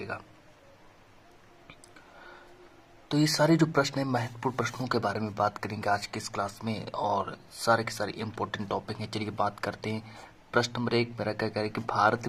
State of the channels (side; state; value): both; identical; correlation 1.00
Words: तो ये सारे जो प्रश्न है महत्वपूर्ण प्रश्नों के बारे में बात करेंगे आज की इस क्लास में और सारे के सारे इंपॉर्टेंट टॉपिक हैं। चलिए बात करते हैं। प्रश्न नंबर 1 मेरा क्या कह रहा है कि भारत